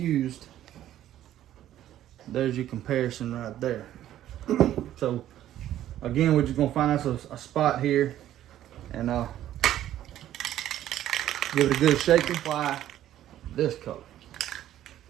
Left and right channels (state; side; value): quieter; left; 12.4 dB